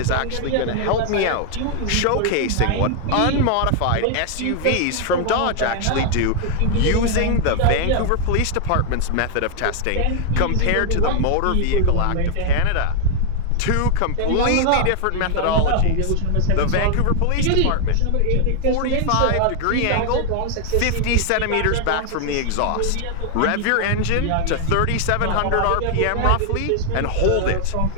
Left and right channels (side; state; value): both; different; correlation 0.00